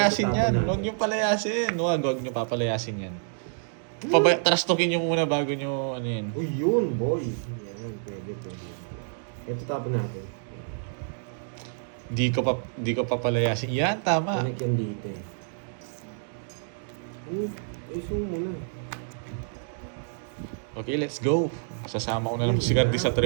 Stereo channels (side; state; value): left; silent; digital silence